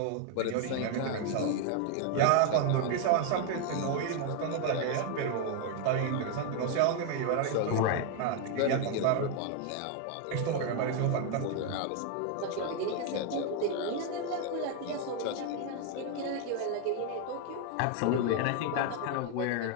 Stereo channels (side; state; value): both; different; correlation 0.01